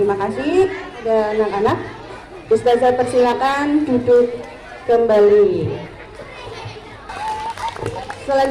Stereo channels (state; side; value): identical; both; correlation 1.00